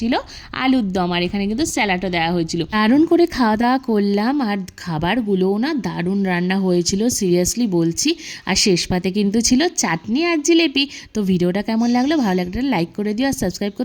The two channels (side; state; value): both; identical; correlation 1.00